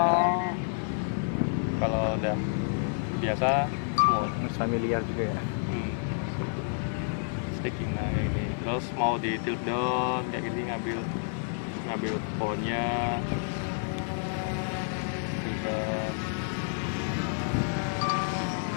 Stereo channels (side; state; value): right; silent; 58 dB below the other